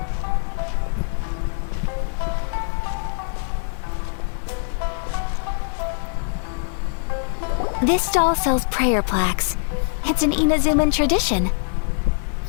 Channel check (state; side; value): silent; right; 63 dB below the other